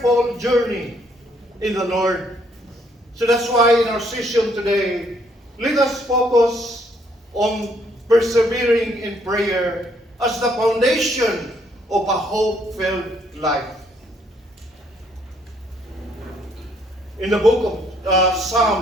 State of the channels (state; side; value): normal; both; correlation 0.68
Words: journey in the Lord. So that's why in our session today, let us focus on persevering in prayer as the foundation of a hope-filled life. in the book of